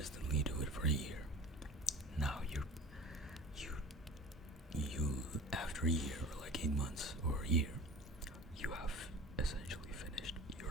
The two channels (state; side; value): normal; both; correlation 0.38